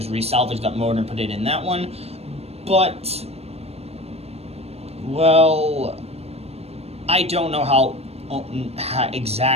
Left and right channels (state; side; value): late; left; 0.30 ms